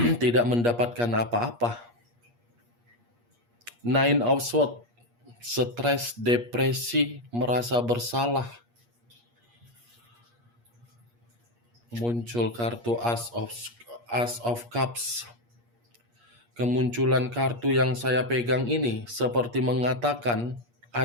tidak mendapatkan apa-apa. Nine of Swords, stres, depresi, merasa bersalah. Muncul kartu As of Cups. Kemunculan kartu yang saya pegang ini seperti mengatakan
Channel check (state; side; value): late; left; 8.5 ms